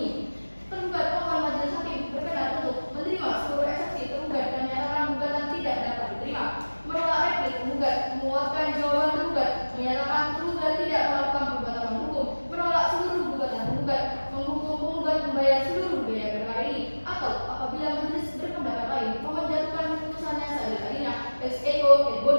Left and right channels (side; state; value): both; inverted; correlation -1.00